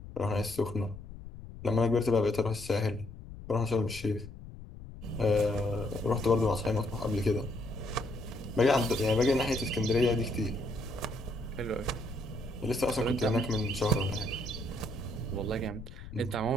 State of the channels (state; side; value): noise; left; rumble, 14 dB below the sound